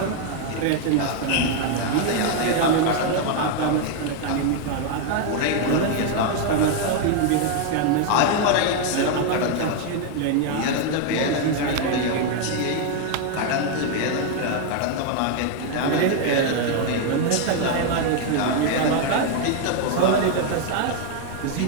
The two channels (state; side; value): different; both; correlation 0.01